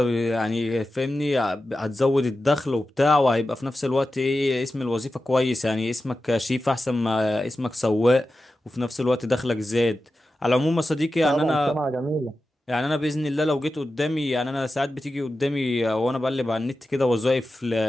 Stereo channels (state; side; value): normal; both; correlation 0.93